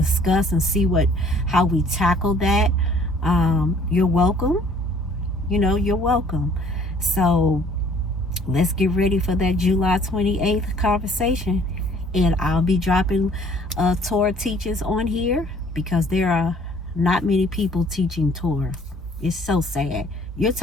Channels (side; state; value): both; normal; correlation 0.57